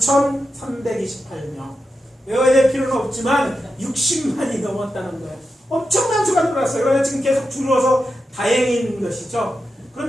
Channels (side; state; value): both; normal; correlation 0.89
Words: 외워야 될 필요는 없지만 60만이 넘었다는 거예요. 엄청난 수가 늘어났어요. 그러나 지금 계속 줄어서 다행인 것이죠.